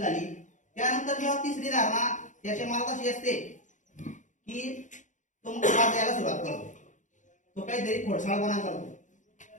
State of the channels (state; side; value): late; right; 0.36 ms